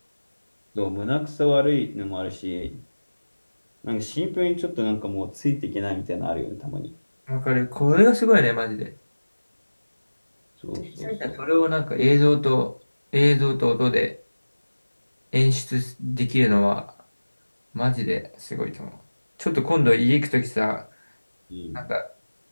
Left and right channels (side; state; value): both; inverted; correlation -1.00